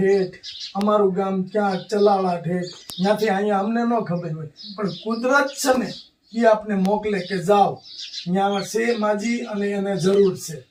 અમારું ગામ ક્યાં ચલાળા ઠેઠ, ત્યાંથી અહીંયા અમને ન ખબર હોય, પણ કુદરત છે ને એ આપને મોકલે કે જાઓ ત્યાં છે માજી અને એને જરૂર છે.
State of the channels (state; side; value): identical; both; correlation 1.00